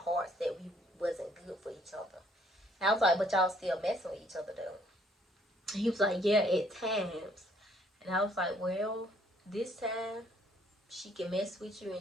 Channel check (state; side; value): normal; both; correlation 0.64